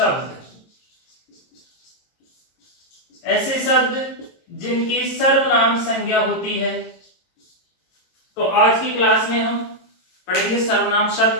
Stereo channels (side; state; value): right; late; 22 ms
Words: ऐसे शब्द जिनकी सर्वनाम संज्ञा होती है। तो आज की क्लास में हम पढ़ेंगे सर्वनाम